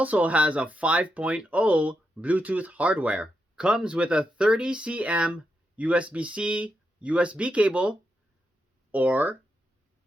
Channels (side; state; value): both; normal; correlation 0.84